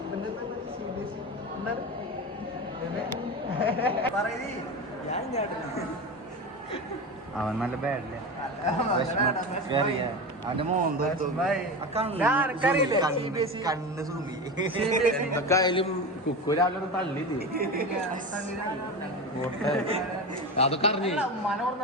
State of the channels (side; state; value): both; normal; correlation 0.24